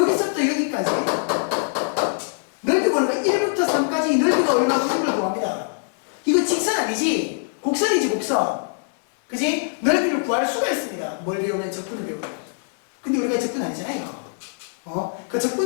여기까지 넓이 구하는 거 1부터 3까지 넓이가 얼마고 이걸 구합니다. 이거 직선 아니지? 곡선이지 곡선. 그지? 넓이를 구할 수가 있습니다. 뭘 배우면 적분을 배우는. 근데 우리가 적분 아니잖아요 이거. 그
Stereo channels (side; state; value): right; silent; digital silence